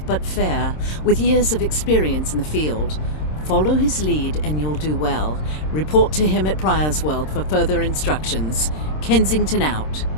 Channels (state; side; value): late; right; 26 ms